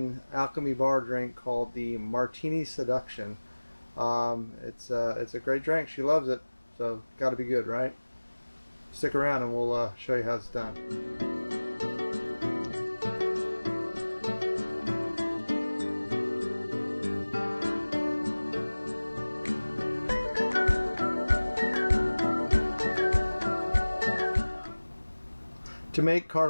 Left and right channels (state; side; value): inverted; both; correlation -1.00